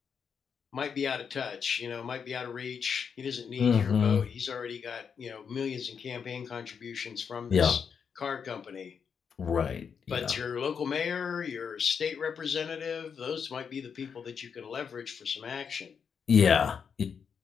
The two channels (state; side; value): quieter; right; 6.7 dB